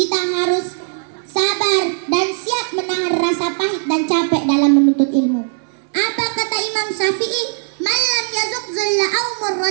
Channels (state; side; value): silent; left; digital silence